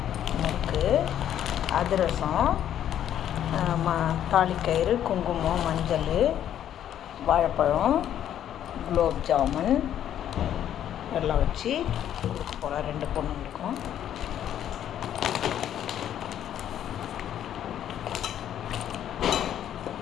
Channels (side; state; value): right; quieter; 10.6 dB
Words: முறுக்கு, அதிரசம், தாலிக்கயிறு, குங்குமம், மஞ்சள், வாழைப்பழம், குலோப் ஜாமுன் எல்லாம் வச்சு கொடுக்க போகிறேன் 2 பொண்ணுங்களுக்கும்.